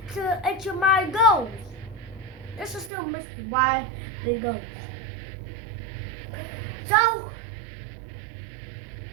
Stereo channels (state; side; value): drops out; left; at 2.9 s